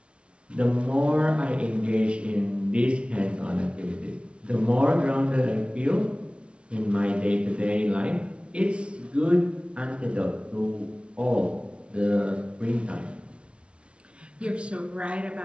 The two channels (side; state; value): left; late; 0.059 ms